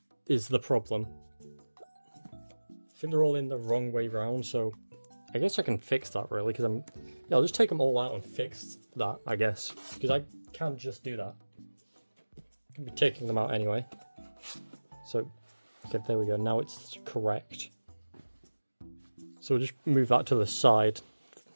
is the problem. I think they're all in the wrong way round, so I guess I can fix that really, because I'll just take them all out and fix that, I guess, because I can't just do that. I can be taking them out anyway. So, okay, there we go, now it's correct. So we'll just move that to the side.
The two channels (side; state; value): both; inverted; correlation -1.00